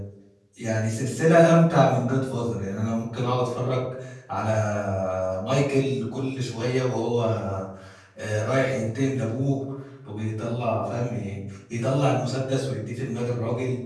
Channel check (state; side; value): identical; both; correlation 1.00